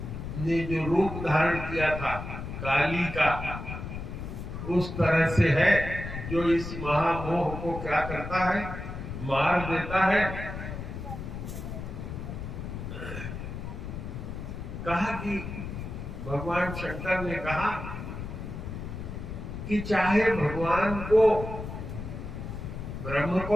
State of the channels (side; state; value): left; noise; rumble, 7 dB below the sound